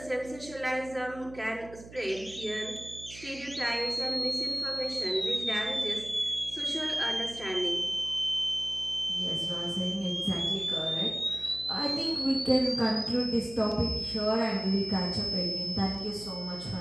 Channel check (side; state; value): right; noise; hum, 17 dB below the sound